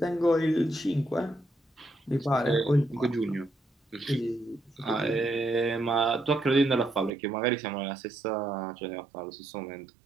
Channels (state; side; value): drops out; left; at 7.1 s